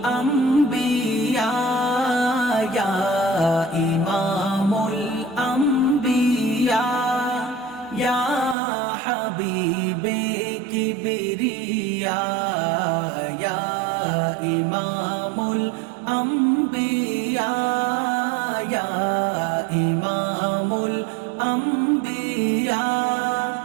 Ya Imamul Anbiya, Ya Habibe Kibriya, Ya Imamul Anbiya, Ya Imamul Anbiya,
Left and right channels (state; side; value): drops out; left; at 8.6 s